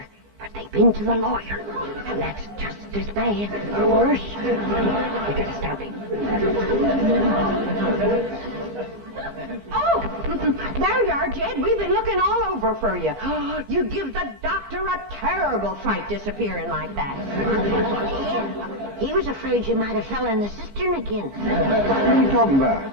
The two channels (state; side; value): late; left; 15 ms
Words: but they've been to the lawyer. And that's just as bad, or worse. We gotta stop him. Oh, there you are, Jed. We've been looking all over for you. You give the doctor a terrible fright disappearing like that. Yeah, he was afraid you might have fell in the cistern again. What are you talking about?